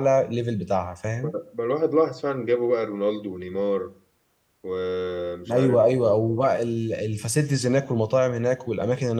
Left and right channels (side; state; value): both; identical; correlation 1.00